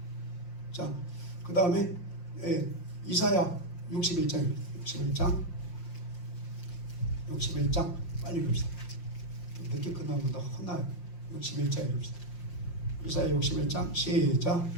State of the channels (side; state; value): right; late; 5.7 ms